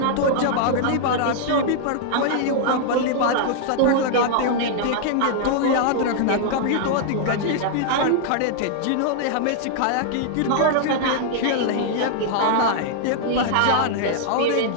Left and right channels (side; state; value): both; different; correlation -0.01